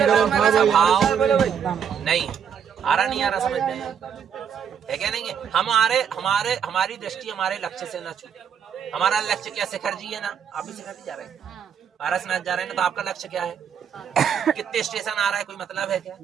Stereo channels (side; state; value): left; quieter; 7.8 dB